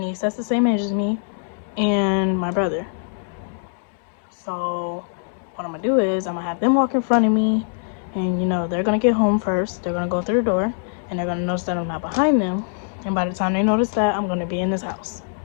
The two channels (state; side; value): silent; right; digital silence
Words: that's the same age as me and my brother. So what I'm gonna do is I'm gonna have them walk in front of me, and you know, they're gonna get home first. They're gonna go through the door, and they're gonna notice that I'm not behind them. And by the time they notice that, I'm gonna be in this house.